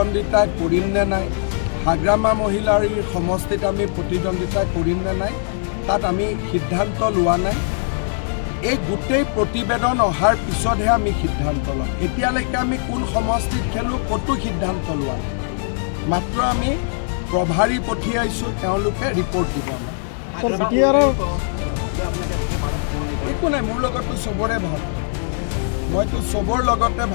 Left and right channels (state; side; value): silent; right; 63 dB below the other